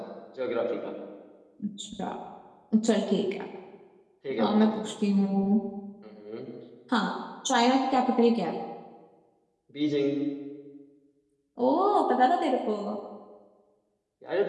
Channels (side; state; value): both; identical; correlation 1.00